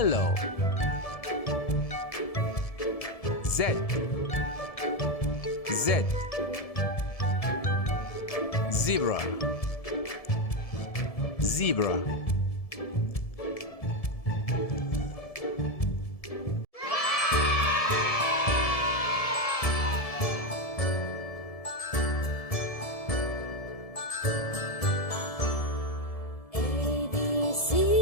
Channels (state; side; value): late; right; 1.7 ms